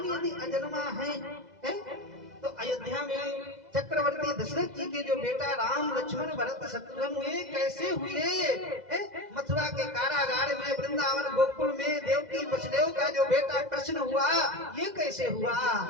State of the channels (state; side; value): late; left; 2.0 ms